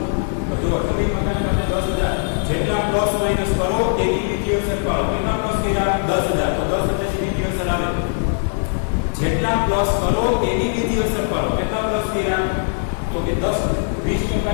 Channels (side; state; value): right; silent; 65 dB below the other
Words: તો જો જમીન મકાન સાથે 10,000 જેટલા પ્લસ માઇનસ કરો તેની બીજી અસર પાડો. કેટલા પ્લસ કર્યા? 10,000. તો 10,000 ની બીજી અસર આવે. જેટલા પ્લસ કરો તેની બીજી અસર પાડો. કેટલા પ્લસ કર્યા? તો કે 20%